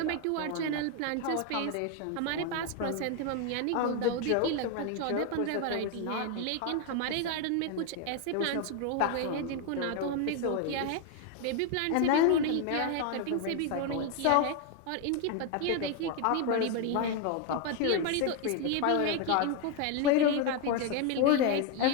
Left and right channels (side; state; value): both; different; correlation 0.01